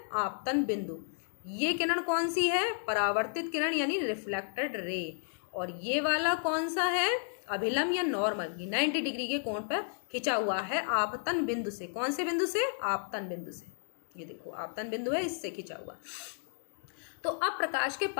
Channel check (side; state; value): right; silent; digital silence